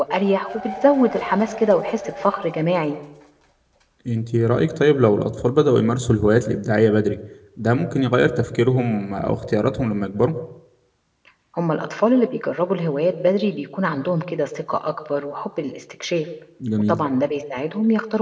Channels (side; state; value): both; identical; correlation 1.00